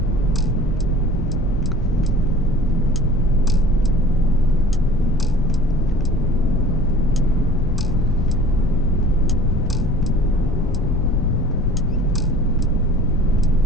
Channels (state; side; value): noise; left; rumble, 4 dB below the sound